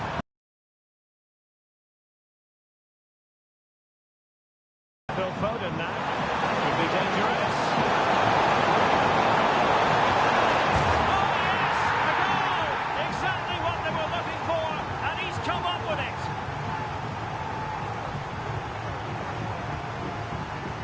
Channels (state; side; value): identical; both; correlation 1.00